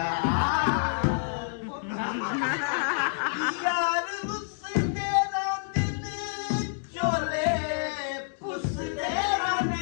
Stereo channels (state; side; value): silent; right; digital silence